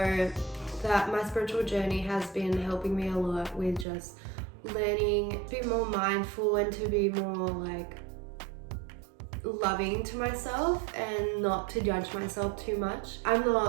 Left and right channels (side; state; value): left; drops out; at 3.9 s